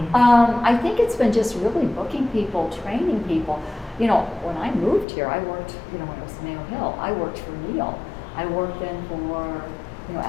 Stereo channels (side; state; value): right; drops out; at 5.1 s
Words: I think it's been just really booking people, training people. You know, when I moved here, I worked, you know, when it was Neal Hamil, I worked for Neal. I worked then for, you know,